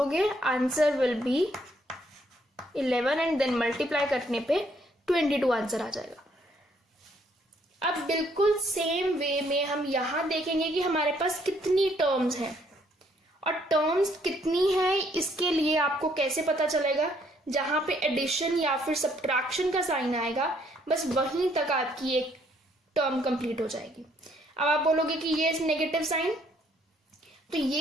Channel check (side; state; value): both; normal; correlation 0.67